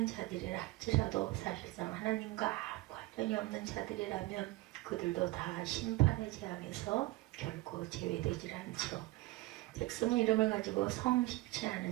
자들이라 할지라도 사실상 하나님과 관련이 없는 자들이라면 그들도 다 심판의 재앙에서 결코 제외되질 않죠. 백성의 이름을 가지고 성실치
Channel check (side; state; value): left; quieter; 19.8 dB